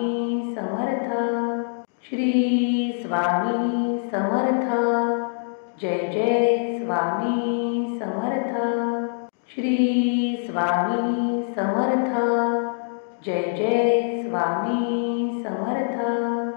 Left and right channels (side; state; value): right; silent; digital silence